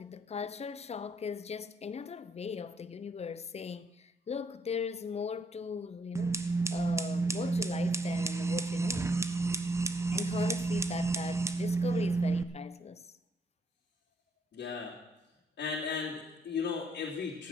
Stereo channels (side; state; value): both; normal; correlation 0.71